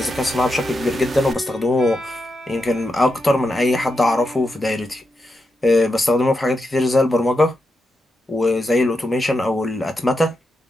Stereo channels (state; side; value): normal; both; correlation 0.86